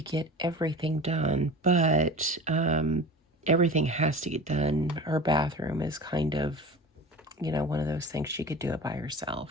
get everything done, but everything has to get done. Her bathroom is kind of, one of those things she could do it by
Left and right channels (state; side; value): normal; both; correlation 0.35